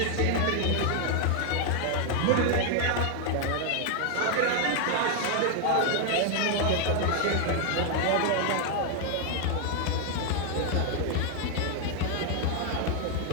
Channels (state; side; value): different; both; correlation 0.00